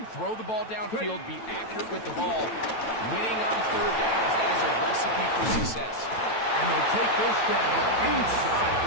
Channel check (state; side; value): late; right; 9.1 ms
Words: throw the ball downfield, be accurate with the ball. Winning on third downs, that is a recipe for success. And they'll take this down inside